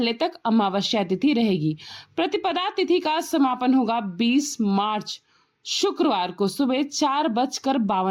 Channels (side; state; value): both; identical; correlation 1.00